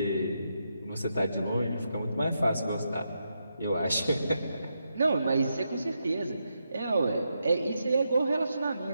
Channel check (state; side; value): inverted; both; correlation -0.84